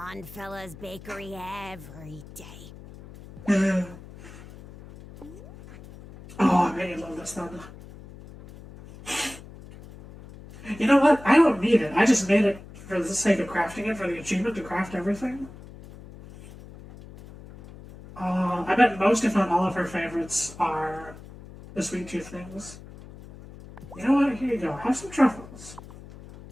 fella's bakery every day. Oh, I really love this thunder. You know what? I don't need it. I just made it for the sake of crafting it, for the achievement to craft everything. I bet most, if not all, of her favorites are the sweet tooth things. You know what? Here you go. Have some truffles.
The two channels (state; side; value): noise; left; hum, 17 dB below the sound